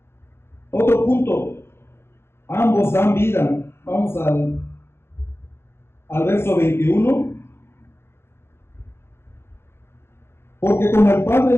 Otro punto, ambos dan vida. Vamos al verso 21. Porque como el Padre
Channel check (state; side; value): late; right; 0.12 ms